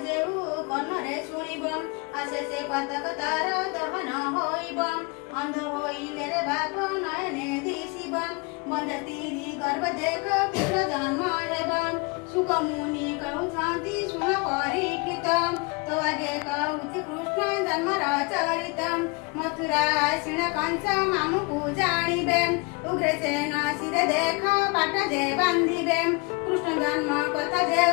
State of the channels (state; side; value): quieter; right; 28.8 dB